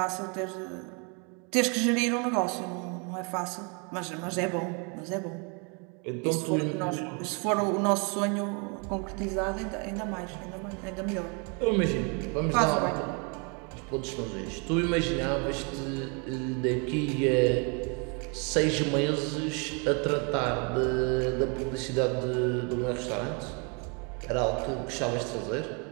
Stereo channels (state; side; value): quieter; left; 34.4 dB